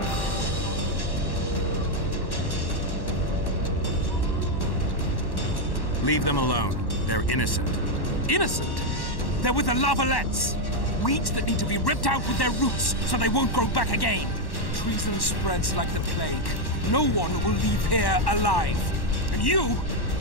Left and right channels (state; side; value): late; right; 1.1 ms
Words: Leave them alone. They're innocent. Innocent? They're with the Lavalettes. Weeds that need to be ripped out with their roots so they won't grow back again. Treason spreads like the plague. No one will leave here alive. And you,